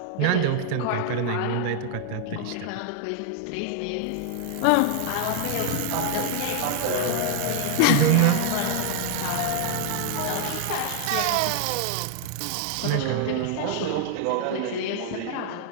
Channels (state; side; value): different; both; correlation 0.00